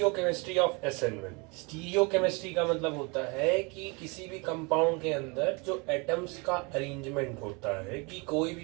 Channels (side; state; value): left; quieter; 29.8 dB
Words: ऑफ SN1। स्टीरियोकेमिस्ट्री का मतलब होता है कि किसी भी कंपाउंड के अंदर जो एटम्स का अरेंजमेंट होता है, कि कोई